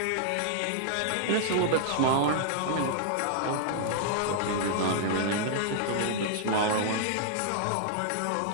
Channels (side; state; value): both; different; correlation -0.01